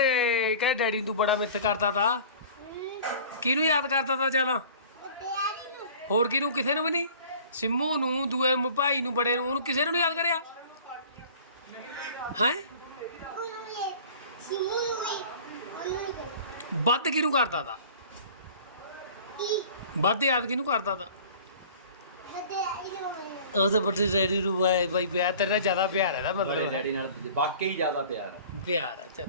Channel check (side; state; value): both; inverted; correlation -0.44